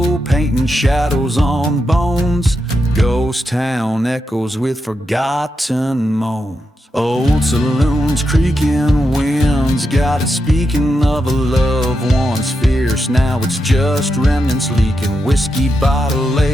painting shadows on bones. Ghost town echoes with forgotten moans. Old saloons, creaking winds, got it speaking of a love once fierce. Now it's just remnants leaking. Whiskey bottle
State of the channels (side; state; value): both; normal; correlation 0.86